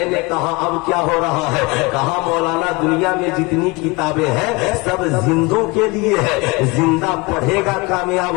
نے کہا اب کیا ہو رہا ہے؟ کہا مولانا دنیا میں جتنی کتابیں ہیں سب زندوں کے لیے ہے، زندہ پڑھے گا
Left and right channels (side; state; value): right; quieter; 25.2 dB